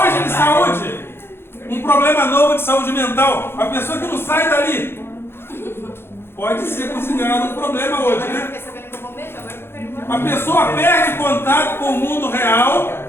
de saúde. Um problema novo de saúde mental. A pessoa que não sai dali pode ser considerado um problema hoje, né? A pessoa perde contato com o mundo real.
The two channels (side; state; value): right; late; 0.11 ms